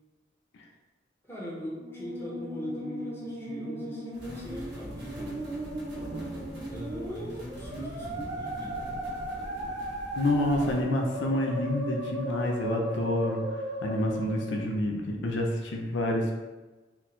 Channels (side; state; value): both; normal; correlation 0.57